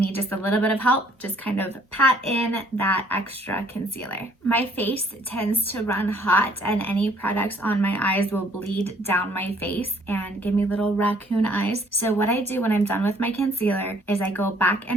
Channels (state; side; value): normal; both; correlation 0.61